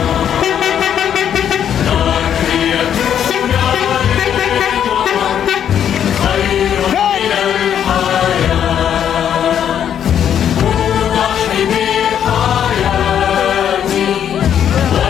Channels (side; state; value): right; quieter; 9.3 dB